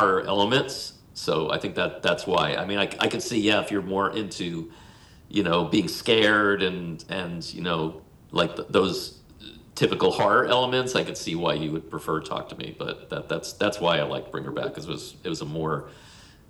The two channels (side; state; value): both; identical; correlation 1.00